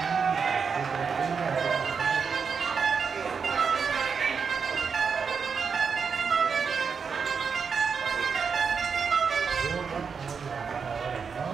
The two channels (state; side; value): quieter; left; 5.9 dB